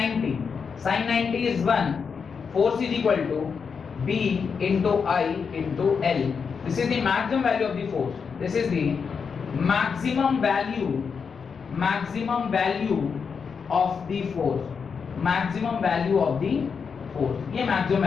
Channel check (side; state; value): right; quieter; 6.0 dB